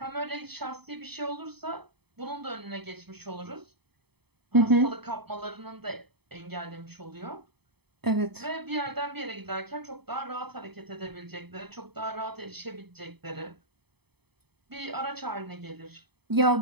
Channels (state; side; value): late; left; 0.98 ms